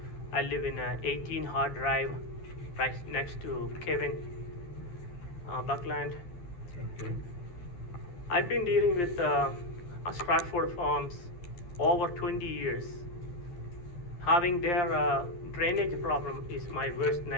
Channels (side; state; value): right; late; 11 ms